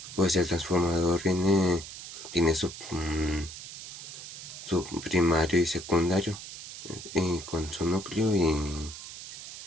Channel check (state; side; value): noise; right; hiss, 12 dB below the sound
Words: pues el transformador tiene su primario y secundario, y con su núcleo